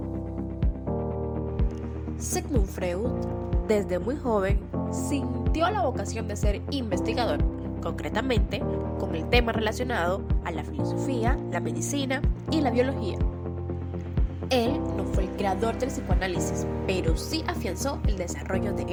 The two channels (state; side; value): identical; both; correlation 1.00